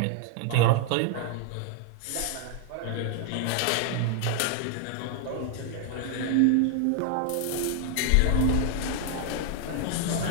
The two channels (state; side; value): different; both; correlation 0.00